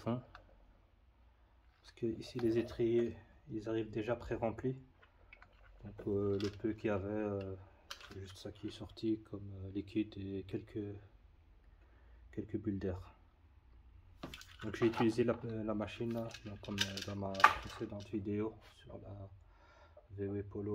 parce que ici les étriers ils arrivent déjà pré-remplis. Donc le peu qu'il y avait, c'est juste ça qui est sorti comme liquide et quelques bulles d'air. Donc j'ai utilisé la machine là, donc comme dans ma précédente vidéo sur la VW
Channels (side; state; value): both; identical; correlation 1.00